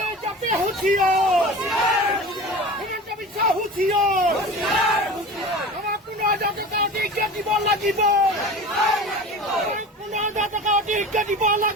হুঁচিয়াৰ হিমন্ত বিশ্ব হুঁচিয়াৰ আমাক 15,000 টকা অধিক দিব লাগিব 15,000 টকা অধিক দিব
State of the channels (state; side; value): normal; both; correlation 0.34